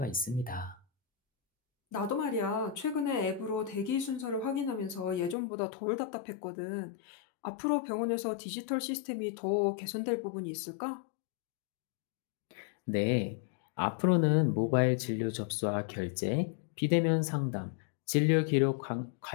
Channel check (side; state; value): right; drops out; at 5.4 s